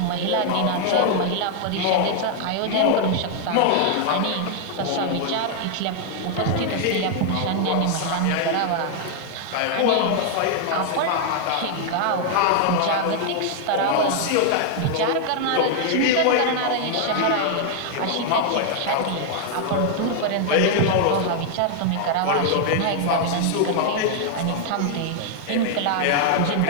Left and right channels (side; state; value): both; different; correlation 0.00